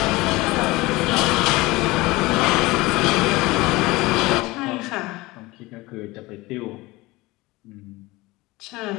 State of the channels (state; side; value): quieter; right; 21.2 dB